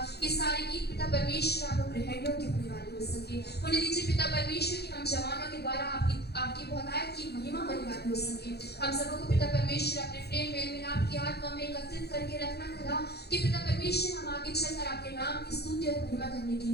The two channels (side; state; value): right; late; 0.47 ms